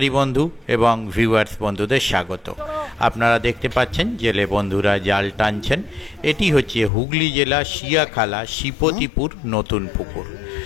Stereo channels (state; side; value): drops out; right; at 6.9 s